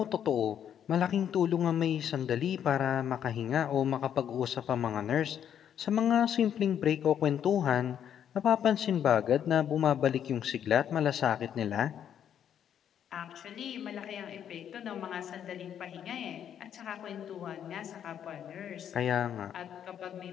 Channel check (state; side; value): quieter; right; 9.3 dB